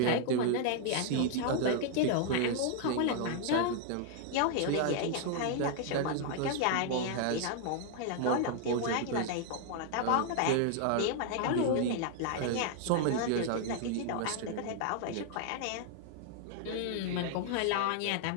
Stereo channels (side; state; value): both; different; correlation 0.00